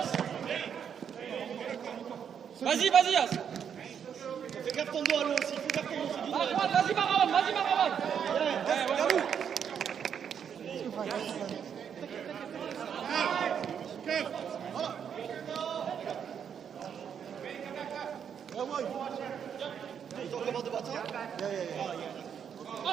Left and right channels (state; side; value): quieter; left; 7.9 dB